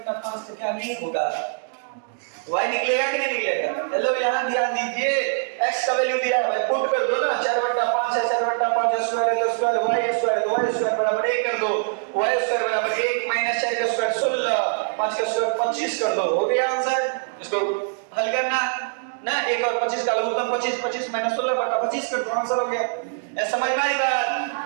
तो क्या नहीं होगा, y निकलेगा कि नहीं निकलेगा। हेलो यहाँ ध्यान दीजिए, x का वैल्यू दिया है, पुट कर दो ना, 4/5 है, 4/5 स्क्वायर है तो स्क्वायर, y स्क्वायर है तो y स्क्वायर बराबर 1 कर दो, y स्क्वायर बराबर 1 माइनस 4 का स्क्वायर 16, 5 का स्क्वायर 25 कर दो, हो गया आंसर। इसको हल करना ना, 1 और 25 का लघुत्तम 25, 25 माइनस 16/25 कर दो, आंसर हो गया। ऐसा समझ में आई बात?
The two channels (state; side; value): silent; left; digital silence